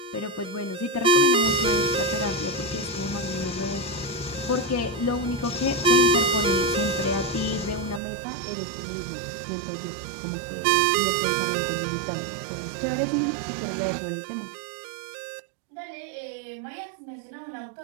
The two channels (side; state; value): left; drops out; at 8.0 s